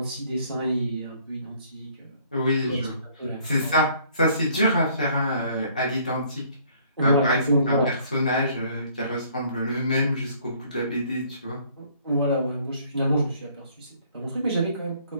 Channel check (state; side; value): inverted; both; correlation -0.60